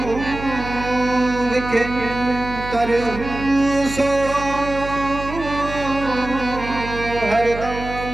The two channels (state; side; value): noise; right; hum, 10 dB below the sound